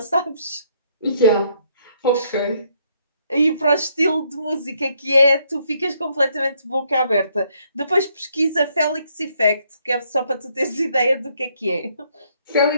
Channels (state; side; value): inverted; both; correlation -0.70